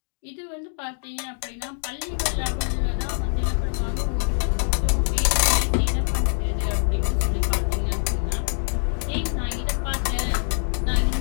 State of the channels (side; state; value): right; silent; 62 dB below the other